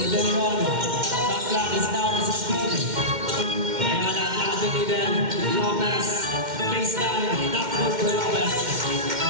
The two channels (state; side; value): late; left; 2.1 ms